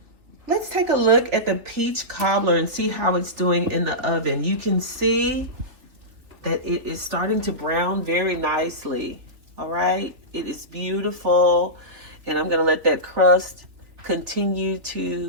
Let's take a look at the peach cobbler and see how it's doing in the oven. You can see that it is starting to brown very nicely. All right, it is beautiful. And I'm gonna let that crust continue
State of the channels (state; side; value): late; left; 3.6 ms